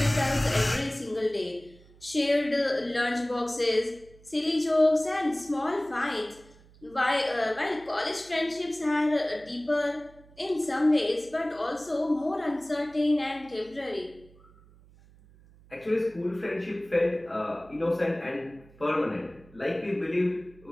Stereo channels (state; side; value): noise; right; hum, 25 dB below the sound